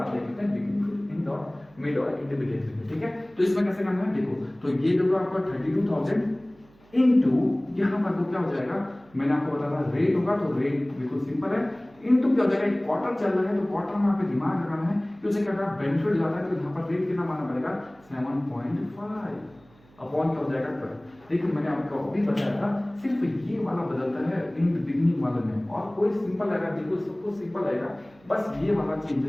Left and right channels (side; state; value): right; noise; hum, 28 dB below the sound